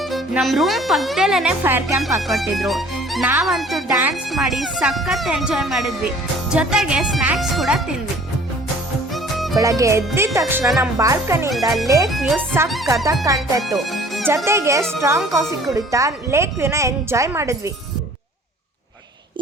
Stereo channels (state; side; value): normal; both; correlation 0.52